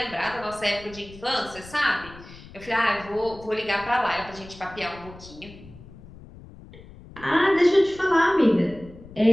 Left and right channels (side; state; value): left; noise; rumble, 18 dB below the sound